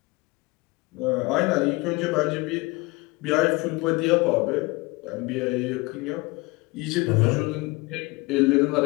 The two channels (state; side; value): quieter; right; 24.3 dB